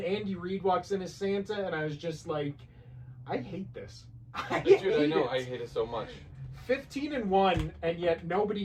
Andy Reid walks in as Santa, and I was just I hate this. I hate it so much. 15-1, and yet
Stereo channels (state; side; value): identical; both; correlation 1.00